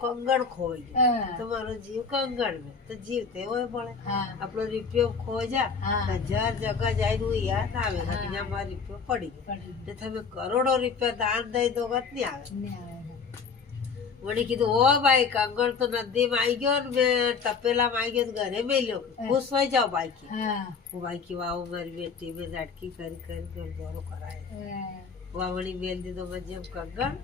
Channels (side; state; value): right; quieter; 5.5 dB